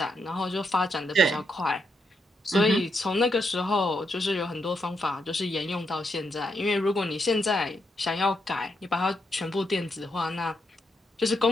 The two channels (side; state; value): both; normal; correlation 0.80